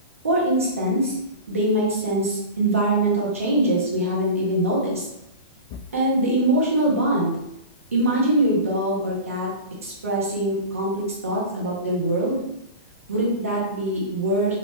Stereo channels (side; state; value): both; inverted; correlation -0.31